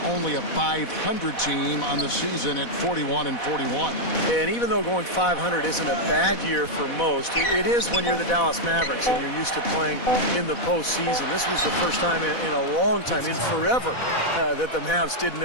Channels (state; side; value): late; right; 4.1 ms